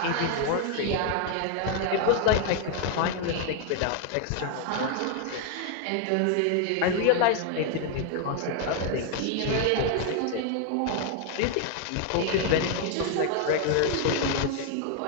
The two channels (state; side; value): different; both; correlation 0.00